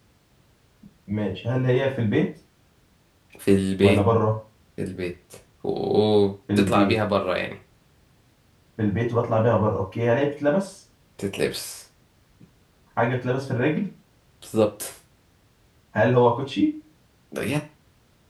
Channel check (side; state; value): both; identical; correlation 1.00